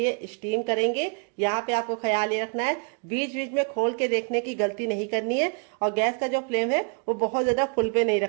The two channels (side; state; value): left; quieter; 38.3 dB